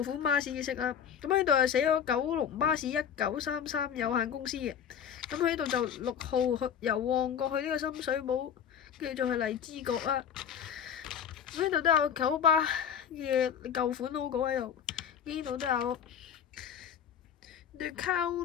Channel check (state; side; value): quieter; right; 8.4 dB